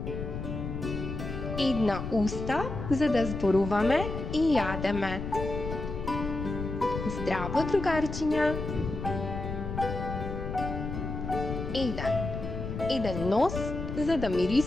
Една уста за да зборуваме и јадеме. Здраво, другарчиња! Еден нос за да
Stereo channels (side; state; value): left; noise; rumble, 6 dB below the sound